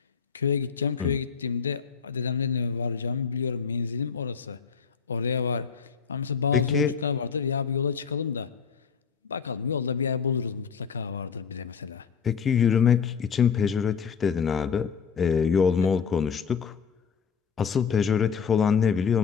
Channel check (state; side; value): quieter; right; 6.4 dB